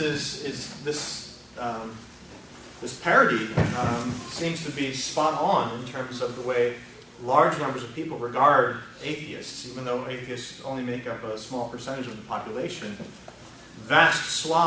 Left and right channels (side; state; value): both; identical; correlation 1.00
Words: this parity seems to be spot on in terms of the way large numbers of people regard atheists, even though atheists only make up a small percentage of the population. Vast